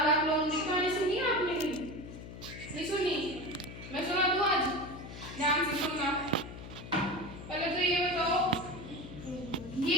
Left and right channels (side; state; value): left; noise; hum, 12 dB below the sound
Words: लोमड़ी कहानी सुनी है आपने? नहीं सुनी? मैं सुना दूं आज? ध्यान से सुनना। पहले तो ये बताओ,